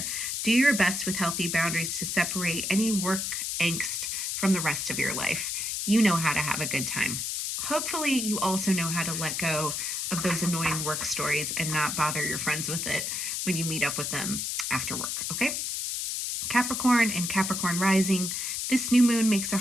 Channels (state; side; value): noise; left; hiss, 2 dB below the sound